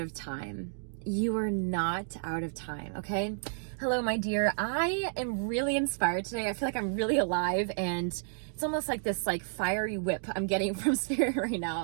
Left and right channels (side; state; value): left; silent; digital silence